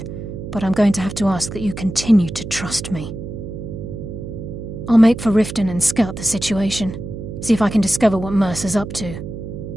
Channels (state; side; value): noise; right; hum, 9 dB below the sound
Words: but I'm going to have to ask that you continue to trust me. I'll make for Riften and scout the situation, see if I can discover what Mercer's up to.